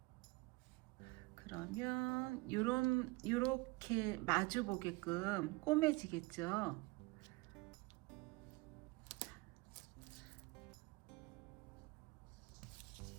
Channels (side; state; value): left; quieter; 24.1 dB